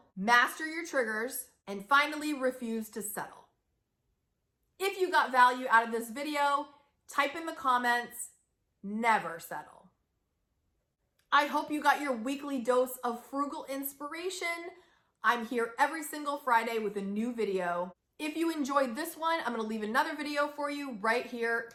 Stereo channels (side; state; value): both; identical; correlation 1.00